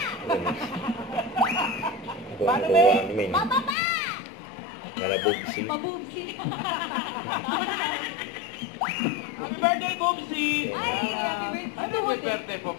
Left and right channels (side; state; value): right; drops out; at 3.8 s